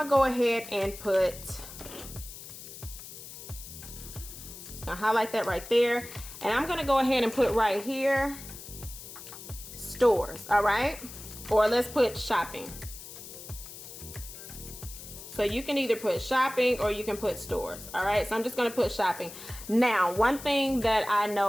to go ahead and put, just going to highlight that right there. And I'm going to go ahead and put right here, stores, all right? Or let's put shopping. So you can either put shopping or you can put stores. All right, so I'm just going to put shopping. Now, one thing that I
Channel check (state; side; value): noise; left; hiss, 13 dB below the sound